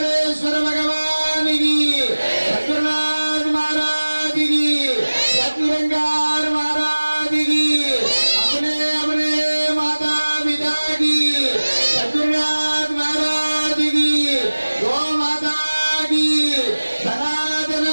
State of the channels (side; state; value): both; inverted; correlation -1.00